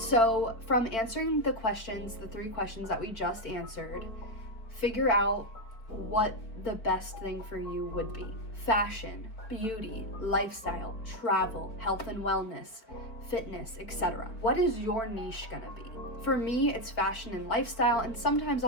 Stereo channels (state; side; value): late; right; 4.5 ms